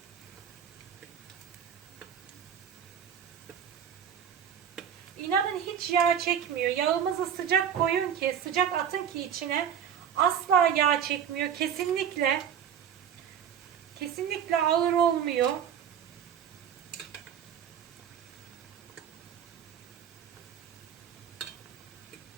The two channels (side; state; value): left; quieter; 8.6 dB